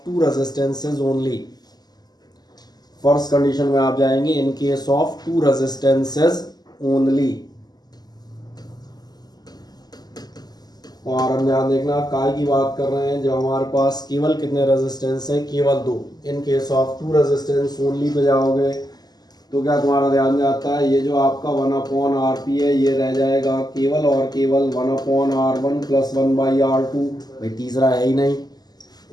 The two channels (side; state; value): right; late; 0.20 ms